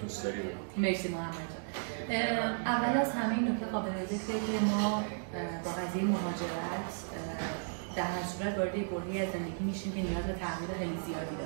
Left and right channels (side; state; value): left; silent; digital silence